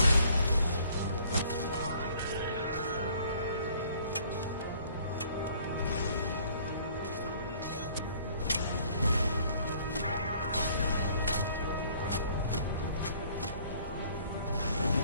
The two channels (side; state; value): both; inverted; correlation -0.58